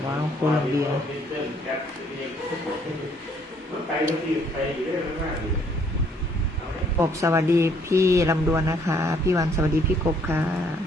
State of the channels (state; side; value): normal; both; correlation 0.65